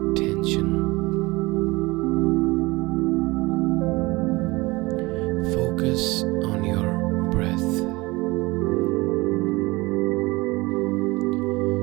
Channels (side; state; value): left; quieter; 22.5 dB